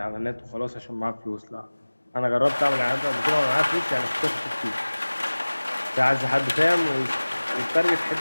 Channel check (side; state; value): both; inverted; correlation -1.00